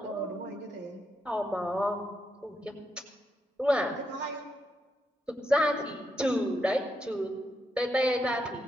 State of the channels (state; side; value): normal; both; correlation 0.81